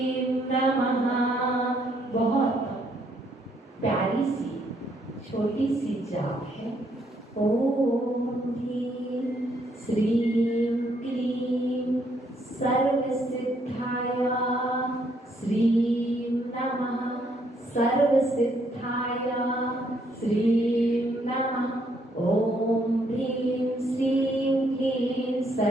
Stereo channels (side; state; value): both; normal; correlation 0.71